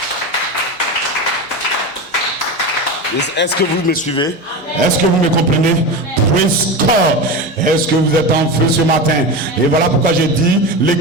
Est-ce que vous me suivez? Est-ce que vous me comprenez? Praise God. Est-ce que vous êtes en feu ce matin? Et voilà pourquoi j'ai dit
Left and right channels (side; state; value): both; normal; correlation 0.23